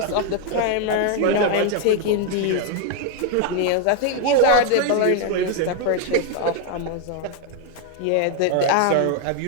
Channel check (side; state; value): both; different; correlation 0.00